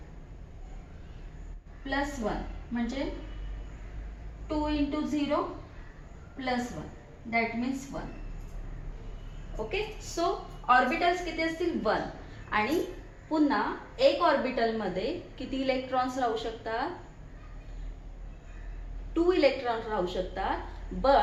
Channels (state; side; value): identical; both; correlation 1.00